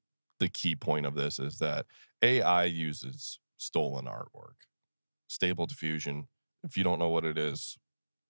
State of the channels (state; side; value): inverted; both; correlation -1.00